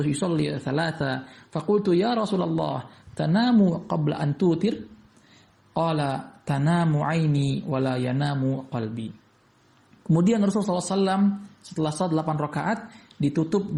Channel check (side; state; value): both; identical; correlation 1.00